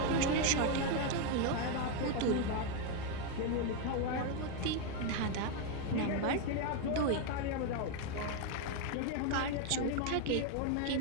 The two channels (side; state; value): both; different; correlation 0.02